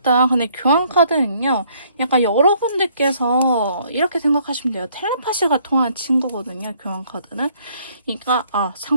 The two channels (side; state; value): both; inverted; correlation -0.65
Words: 근데 교환 카드는요. 약간 여러분들께서 이렇게 생각하시면 돼요. 텔레파시가 통하는 친구거든요. 교환 카드는. 그러니까